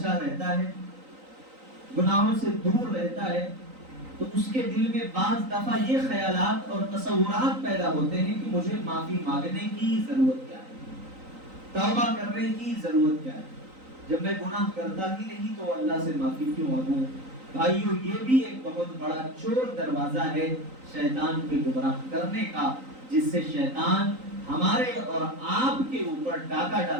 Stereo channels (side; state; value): left; late; 3.9 ms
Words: رہتا ہے، گناہوں سے دور رہتا ہے، تو اس کے دل میں بعض دفعہ یہ خیالات اور تصورات پیدا ہوتے ہیں کہ مجھے معافی مانگنے کی ضرورت کیا ہے، توبہ کرنے کی ضرورت کیا ہے، جب میں گناہ کرتا ہی نہیں تو اللہ سے معافی کیوں مانگوں. بھائیو، یہ بھی ایک بہت بڑا چور دروازہ ہے شیطان کے گمراہ کرنے کا، جس سے شیطان ہمارے اور آپ کے اوپر ڈاکہ